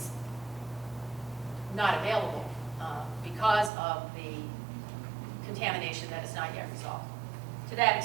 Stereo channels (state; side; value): drops out; left; at 3.7 s